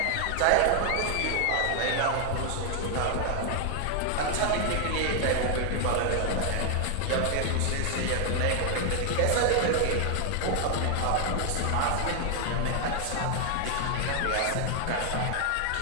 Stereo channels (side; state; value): both; different; correlation 0.00